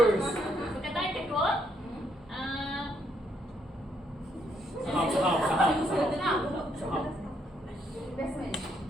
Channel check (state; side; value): normal; both; correlation 0.74